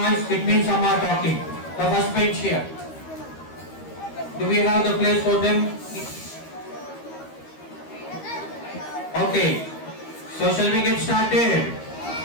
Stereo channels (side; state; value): right; late; 13 ms